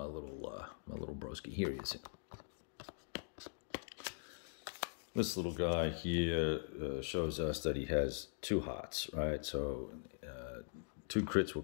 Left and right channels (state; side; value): silent; right; digital silence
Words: broski? Here he is. This little guy here shows us that he has 2 hearts, right? So 2 crits will